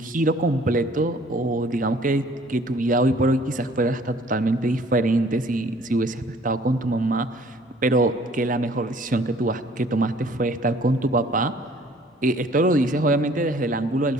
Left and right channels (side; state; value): both; normal; correlation 0.55